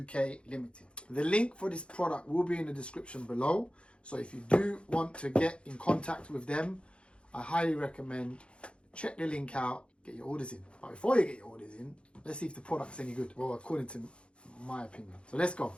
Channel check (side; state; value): right; late; 0.057 ms